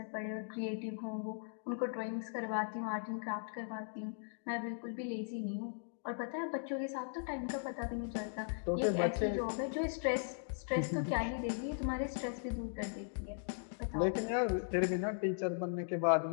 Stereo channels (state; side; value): silent; right; digital silence